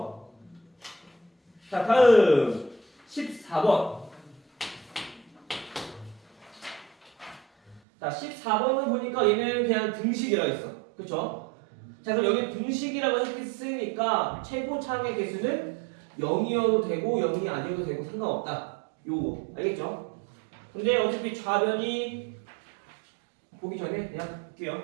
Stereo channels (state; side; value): drops out; left; at 7.8 s